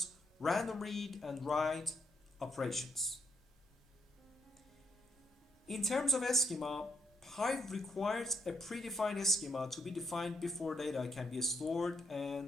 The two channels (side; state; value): both; normal; correlation 0.74